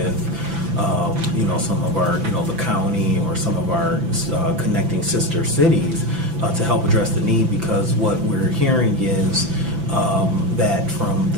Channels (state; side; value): late; left; 6.0 ms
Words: some of our, the county or some of our connecting sister cities to help address the need, because what we're hearing is that from